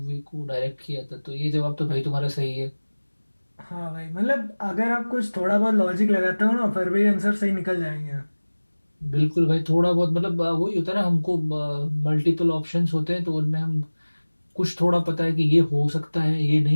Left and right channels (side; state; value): both; inverted; correlation -1.00